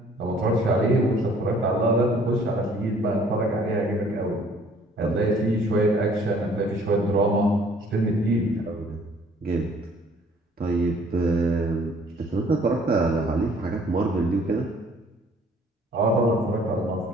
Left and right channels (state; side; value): normal; both; correlation 0.57